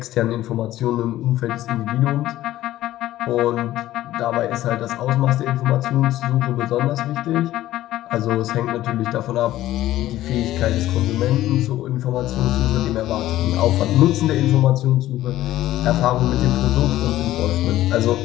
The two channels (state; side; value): quieter; right; 14.5 dB